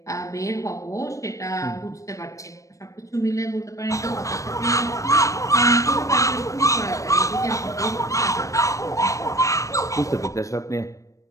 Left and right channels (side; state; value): right; late; 0.16 ms